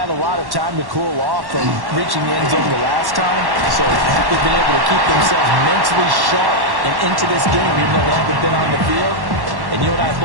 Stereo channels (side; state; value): left; late; 1.1 ms